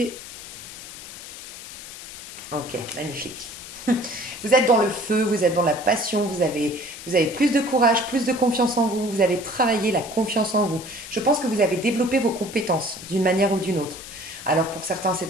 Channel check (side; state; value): left; noise; hiss, 13 dB below the sound